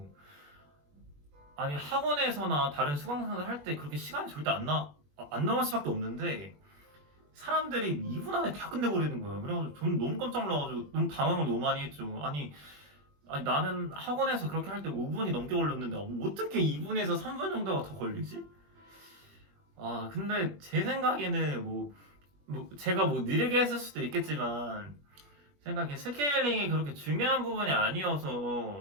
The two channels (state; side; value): late; left; 21 ms